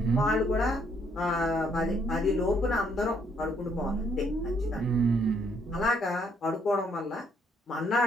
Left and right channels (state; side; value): normal; both; correlation 0.69